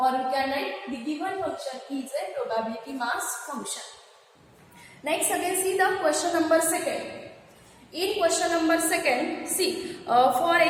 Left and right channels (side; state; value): both; identical; correlation 1.00